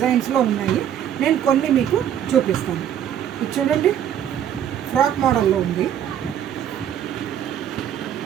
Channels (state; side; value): quieter; left; 10.0 dB